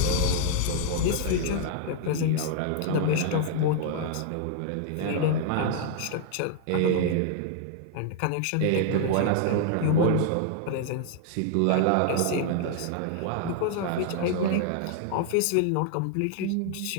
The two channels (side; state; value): both; different; correlation 0.00